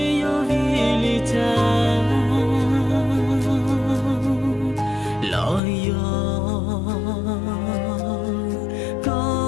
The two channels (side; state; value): right; drops out; at 5.6 s